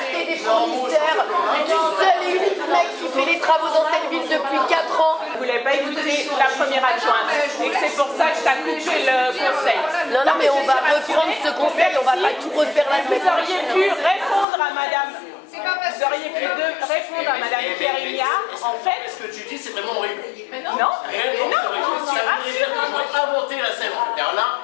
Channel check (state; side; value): drops out; right; at 14.5 s